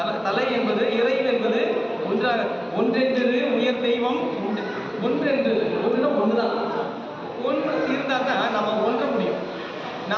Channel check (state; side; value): identical; both; correlation 1.00